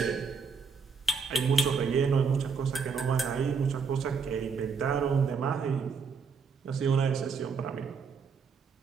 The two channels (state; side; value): quieter; left; 5.6 dB